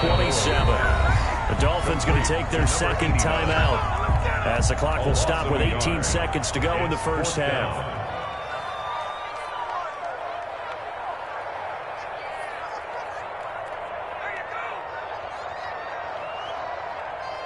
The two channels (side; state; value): both; identical; correlation 1.00